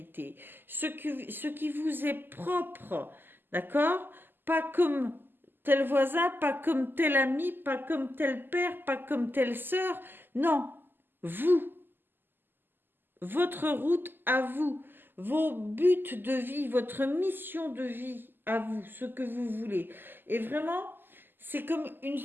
ce qui vous est propre, d'accord? Pas comme tel voisin, pas comme tel ami, pas comme tel père, pas comme telle sœur. Non, vous. Votre route à vous, vos buts de vie, votre mission de vie à vous, ce que vous voulez. Et vraiment, c'est comme une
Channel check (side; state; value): left; late; 0.094 ms